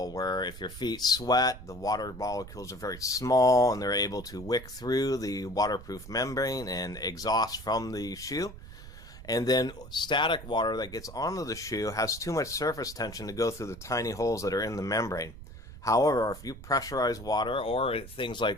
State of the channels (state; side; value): noise; right; rumble, 15 dB below the sound